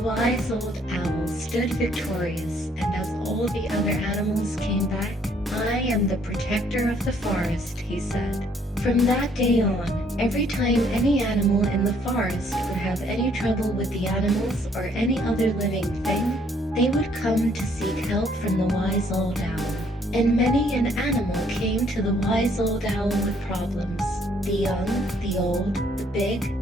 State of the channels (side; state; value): both; normal; correlation 0.65